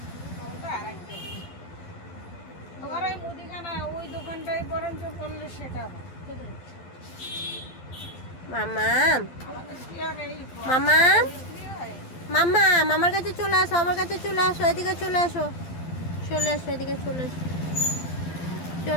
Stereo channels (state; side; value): late; right; 12 ms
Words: ওই দোকানটাই বরঞ্চ করলে সেটা হয়। মামা, মামা, মামা, মামার কাছে চলে আসো, আমার কাছে চলে আসো, এদিকে চলে আসো, চলে আসো, এদিকে চলে আসো,